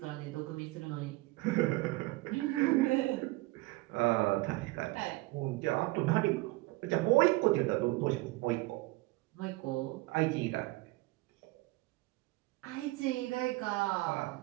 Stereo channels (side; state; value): left; quieter; 20.7 dB